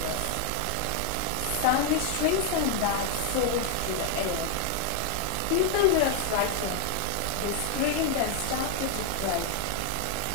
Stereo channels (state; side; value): different; both; correlation 0.00